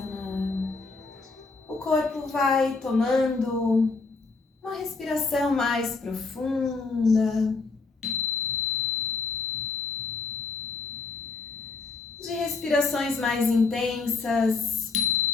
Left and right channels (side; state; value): right; quieter; 4.2 dB